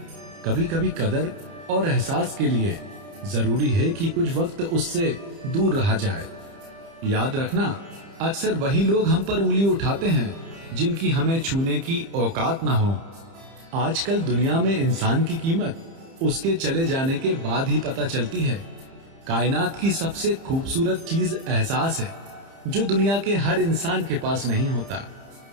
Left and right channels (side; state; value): left; late; 30 ms